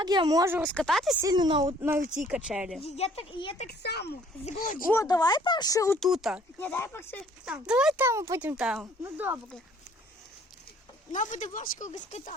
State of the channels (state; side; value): normal; both; correlation 0.58